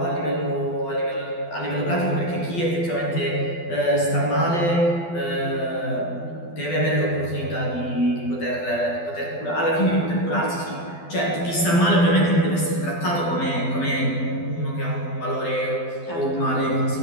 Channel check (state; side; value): late; right; 12 ms